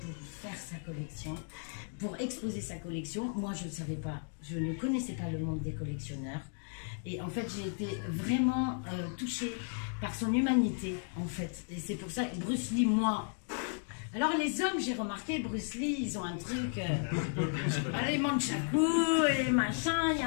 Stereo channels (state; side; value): silent; right; 55 dB below the other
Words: faire sa collection, pour exposer sa collection. Moi je ne savais pas, je ne connaissais pas le monde des collectionneurs. Et en fait j'ai été vraiment touchée par son humanité en fait. Et c'est pour ça que Bruce Lee, moi... Alors les hommes, j'ai remarqué, Bruce Lee, ils ont un truc, les manchaku et machin, il y